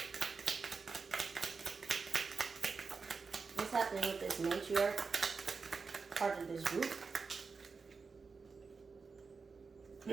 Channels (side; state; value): left; quieter; 4.8 dB